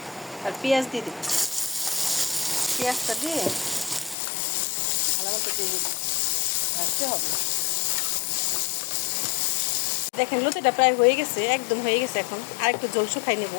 আর পেঁয়াজ দিয়ে দিব, পেঁয়াজটা দিয়ে ভালো মতো দিয়ে দিব, ভাজতে হবে। দেখেন লতিটা প্রায় হয়ে গেছে, একদম হয়ে গেছে। এখন আর একটু জল শুকাই নেব।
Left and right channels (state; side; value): drops out; right; at 4.2 s